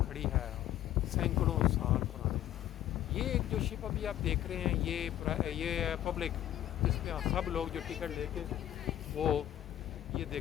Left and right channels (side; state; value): right; quieter; 12.3 dB